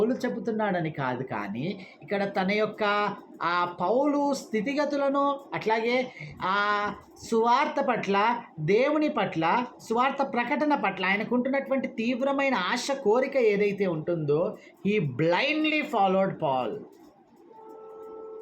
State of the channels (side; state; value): both; identical; correlation 1.00